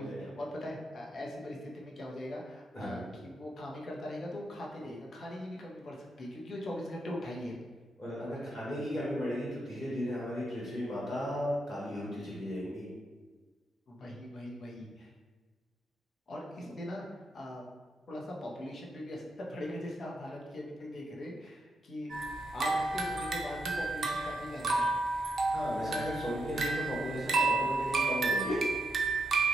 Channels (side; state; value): both; normal; correlation 0.81